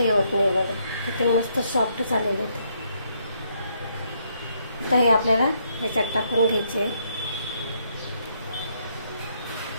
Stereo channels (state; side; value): inverted; both; correlation -0.73